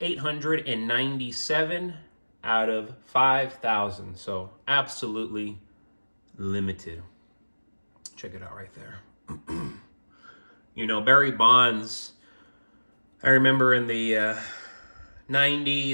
out of 5,000. So absolutely limited. Check it out right there. Barry Bonds, I remember in the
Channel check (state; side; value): inverted; both; correlation -1.00